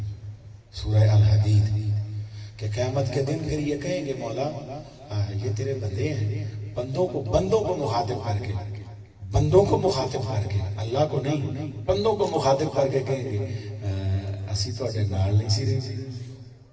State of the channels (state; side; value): identical; both; correlation 1.00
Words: سورہ الحدید کہ قیامت کے دن پھر یہ کہیں گے مولا یہ تیرے بندے ہیں بندوں کو مخاطب کر کے بندوں کو مخاطب کر کے اللہ کو نہیں بندوں کو مخاطب کر کے کہیں گے اسی تو اٹھے نال نہیں سی رہی